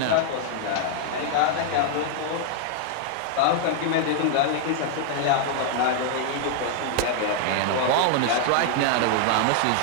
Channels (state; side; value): different; both; correlation 0.00